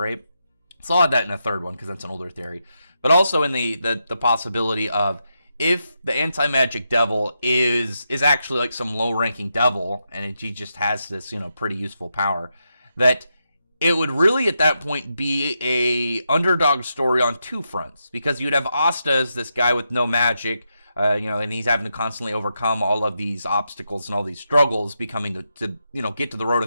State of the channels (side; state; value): both; inverted; correlation -0.85